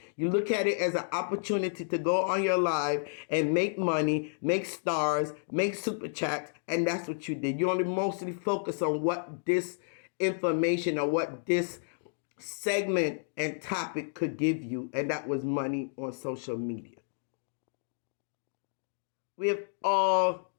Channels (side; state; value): right; silent; digital silence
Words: You look at it as an opportunity to go on your live and make money, make stars, make super chats, and that's what you did. You only mostly focus on what this information or what this segment and topic could give you, and that was money on social media. We have all